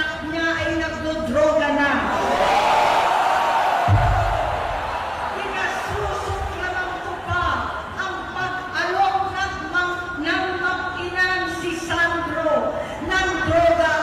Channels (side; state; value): both; identical; correlation 1.00